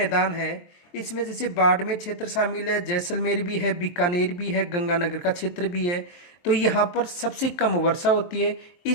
है इसमें जैसे बाड़मेर क्षेत्र शामिल है, जैसलमेर भी है, बीकानेर भी है, गंगानगर का क्षेत्र भी है। तो यहाँ पर सबसे कम वर्षा होती है,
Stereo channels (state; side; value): late; right; 23 ms